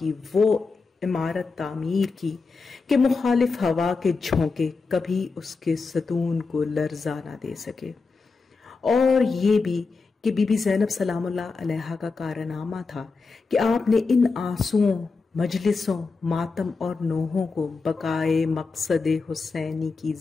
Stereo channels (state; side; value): quieter; right; 4.3 dB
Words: وہ عمارت تعمیر کی کہ مخالف ہوا کے جھونکے کبھی اس کے ستون کو لرزا نہ دے سکے۔ اور یہ بھی کہ بی بی زینب سلام اللہ علیہا کا کارنامہ تھا کہ آپ نے ان آنسوؤں، مجلسوں، ماتم اور نوحوں کو بقائے مقصد حسینی کی